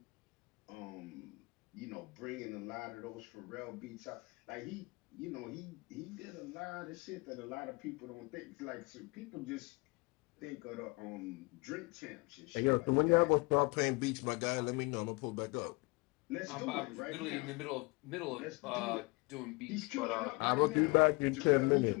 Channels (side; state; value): right; quieter; 26.7 dB